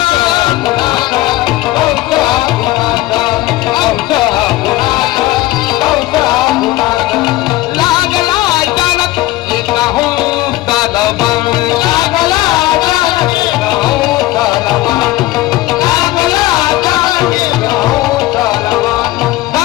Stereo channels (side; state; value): right; quieter; 17.3 dB